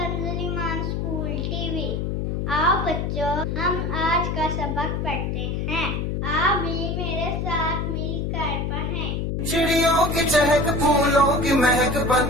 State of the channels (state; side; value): noise; left; hum, 1 dB below the sound